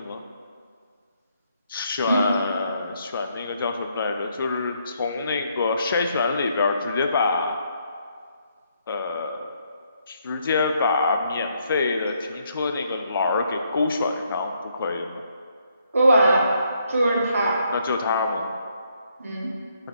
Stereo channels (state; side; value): inverted; both; correlation -0.73